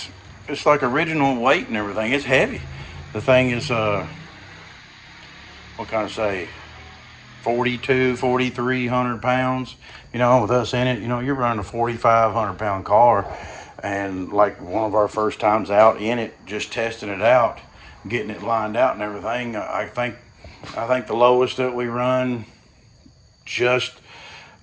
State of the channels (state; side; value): identical; both; correlation 1.00